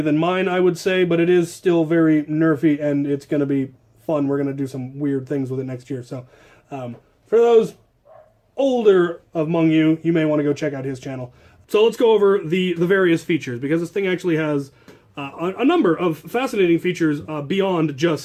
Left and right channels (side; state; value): both; identical; correlation 1.00